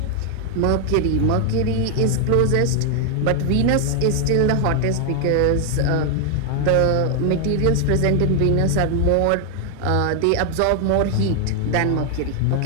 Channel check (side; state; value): both; different; correlation 0.00